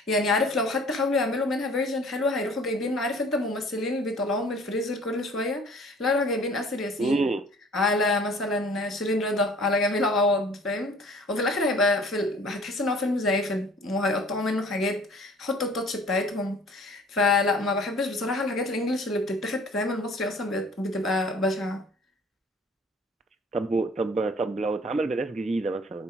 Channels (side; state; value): both; normal; correlation 0.51